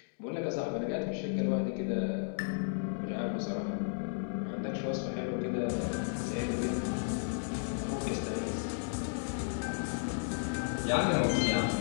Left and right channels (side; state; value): right; silent; digital silence